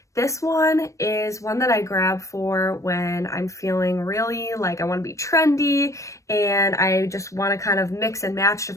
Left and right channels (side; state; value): right; late; 0.15 ms